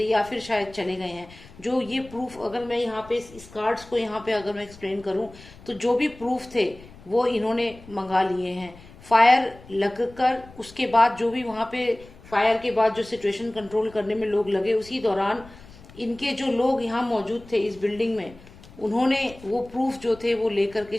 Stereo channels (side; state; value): left; noise; rumble, 21 dB below the sound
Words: या फिर शायद चले गए हैं। जो ये प्रूफ, अगर मैं यहाँ पे इस कार्ड्स को यहाँ पे अगर मैं एक्सप्लेन करूँ, तो जो भी प्रूफ थे वो इन्होंने मंगा लिए हैं। फायर लगकर उसके बाद जो भी वहां पे फायर के बाद जो सिचुएशन कंट्रोल करने में लोग लगे, उसी दौरान इनके जो लोग यहाँ मौजूद थे इस बिल्डिंग में, उन्होंने वो प्रूफ जो थे वो लेकर के